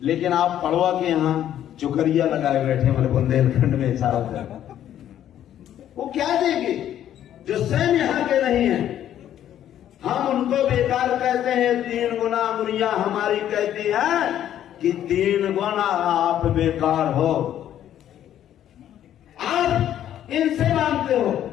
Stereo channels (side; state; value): right; quieter; 11.1 dB